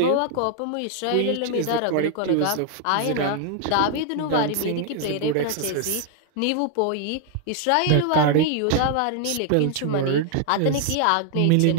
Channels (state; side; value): different; both; correlation 0.00